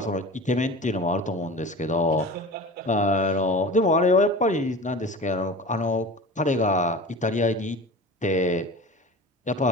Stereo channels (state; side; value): normal; both; correlation 0.35